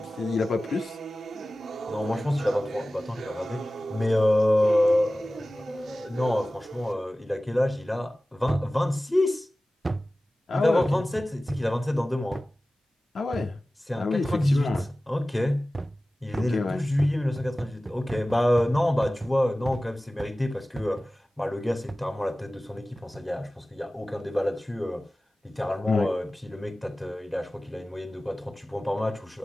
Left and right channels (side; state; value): both; normal; correlation 0.96